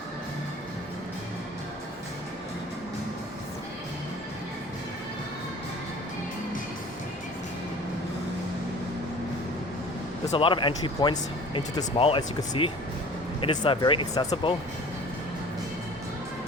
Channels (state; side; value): normal; both; correlation 0.45